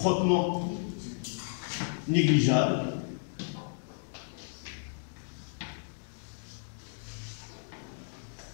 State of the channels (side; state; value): right; silent; digital silence